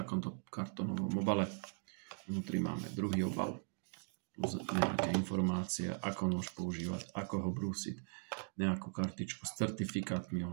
kartónovom obale. Vnútri máme druhý obal. Plus nejaké informácie, ako nôž používať, ako ho brúsiť, nejakú kartičku s certifikátmi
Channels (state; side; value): silent; left; 51 dB below the other